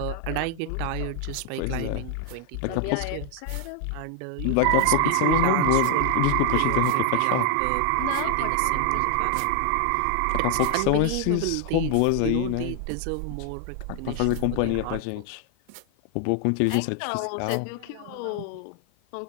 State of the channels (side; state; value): both; different; correlation 0.00